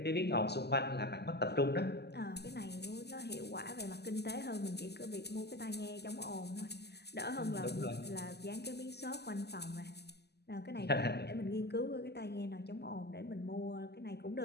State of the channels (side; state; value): right; late; 0.48 ms